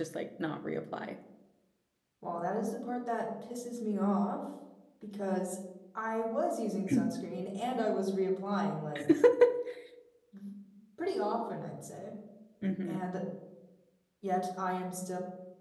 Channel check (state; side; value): identical; both; correlation 1.00